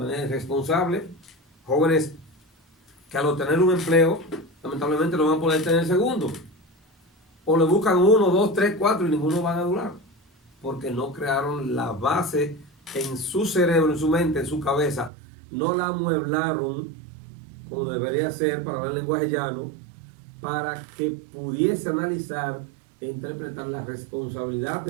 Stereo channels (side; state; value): left; drops out; at 15.1 s